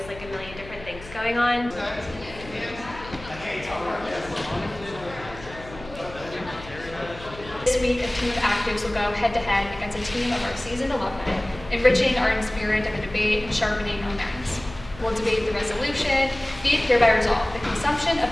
like a million different things going on. This week, a team of actives will go head-to-head against a team of our seasoned alumni, enriching our spirit of a debate and sharpening our minds. We'll debate the resolution, be it hereby resolved. The consumption of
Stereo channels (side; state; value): left; noise; hum, 16 dB below the sound